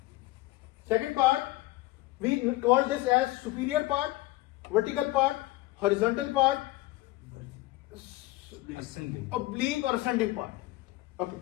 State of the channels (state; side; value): quieter; right; 18.5 dB